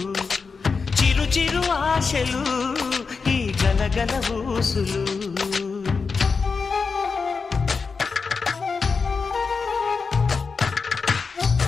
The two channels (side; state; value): right; quieter; 4.9 dB